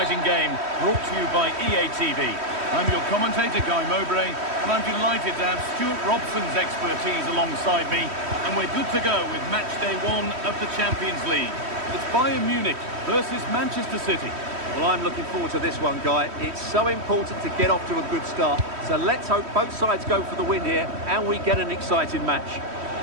game brought to you by EA TV. I'm your commentator, Guy Mowbray, and I'm delighted to have Stuart Robson's expertise alongside me, and we're good to go with match day 1 of the Champions League. It's Bayern Munich versus Manchester City. Well, I'm looking forward to this one, Guy. It's so important to get off to a good start, so let's hope both sides go for the win here and we get an exciting match.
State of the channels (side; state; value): left; late; 3.1 ms